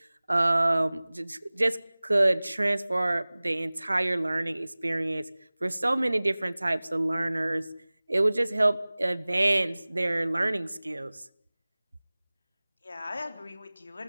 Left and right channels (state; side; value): inverted; both; correlation -0.99